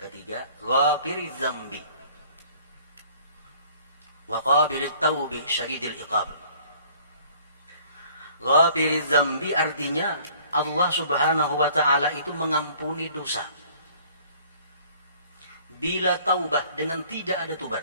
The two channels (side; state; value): both; inverted; correlation -0.54